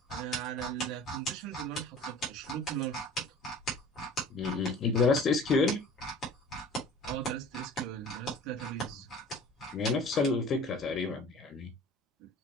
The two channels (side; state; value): both; normal; correlation 0.44